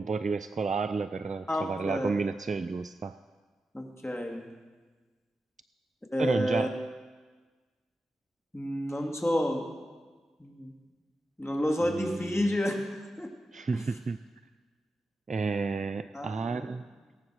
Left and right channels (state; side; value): normal; both; correlation 0.90